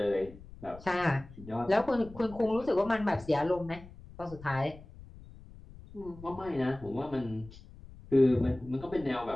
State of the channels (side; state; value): left; noise; rumble, 18 dB below the sound